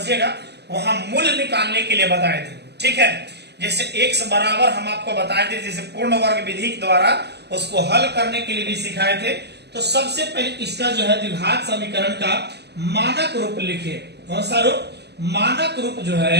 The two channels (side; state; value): left; late; 0.49 ms